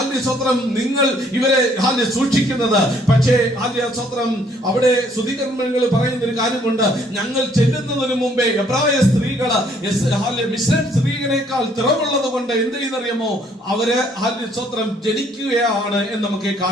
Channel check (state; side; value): normal; both; correlation 0.64